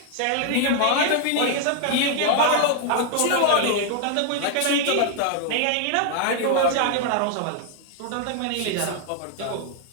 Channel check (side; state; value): both; different; correlation 0.00